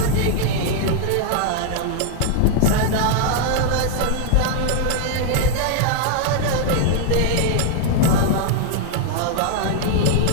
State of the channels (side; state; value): both; different; correlation 0.00